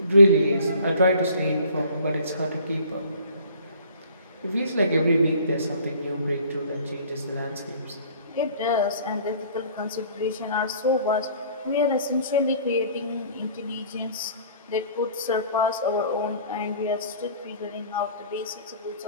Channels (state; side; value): inverted; both; correlation -0.51